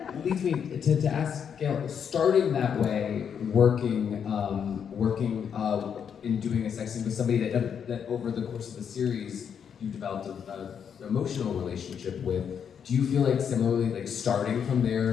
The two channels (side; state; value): right; quieter; 7.6 dB